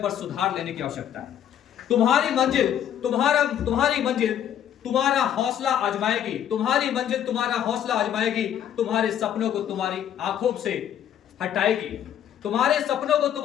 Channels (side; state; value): right; quieter; 10.1 dB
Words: सुधार लेने की आवश्यकता है। तुम्हारी मंजिल तुम्हारा हौसला आजमाएगी, तुम्हारी मंजिल तुम्हारा हौसला आजमाएगी, तुम्हारे सपनों को तुम्हारी आंखों से हटाएगी, तुम्हारे सपनों को